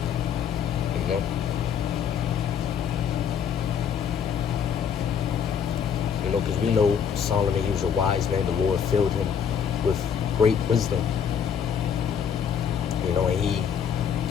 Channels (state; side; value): quieter; right; 7.6 dB